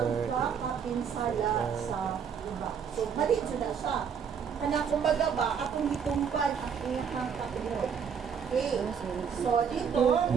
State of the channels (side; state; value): left; quieter; 7.1 dB